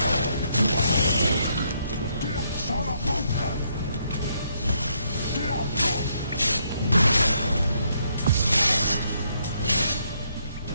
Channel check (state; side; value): inverted; both; correlation -0.74